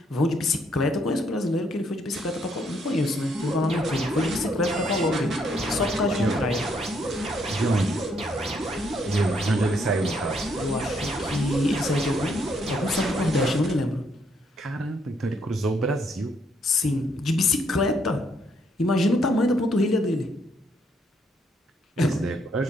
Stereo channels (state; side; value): normal; both; correlation 0.71